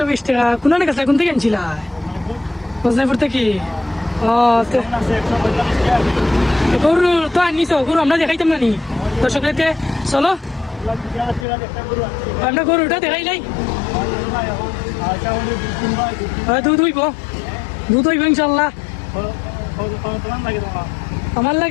টাকা কোন কাছে কোন থেকে আনছিল বজনাপুর থেকে গরু তো আনিস গরু আমরা দেখাইতাম না নি দর্শকদেরকে চলো আমরা গরুটা দেখাই নাই দুধ হইব ইনশাল্লাহ আমার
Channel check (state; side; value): drops out; right; at 11.5 s